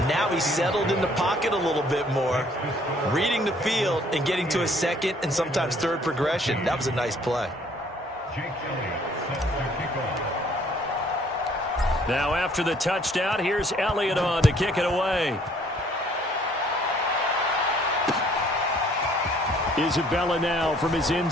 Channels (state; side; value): normal; both; correlation 0.60